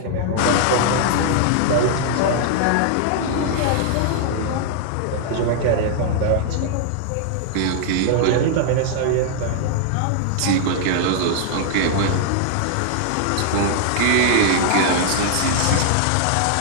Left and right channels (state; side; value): different; both; correlation -0.01